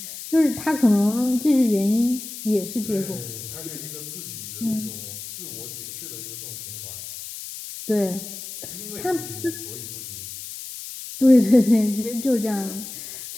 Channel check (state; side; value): noise; left; hiss, 10 dB below the sound